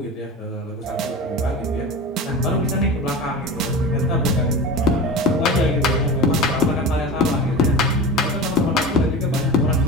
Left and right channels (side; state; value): both; normal; correlation 0.30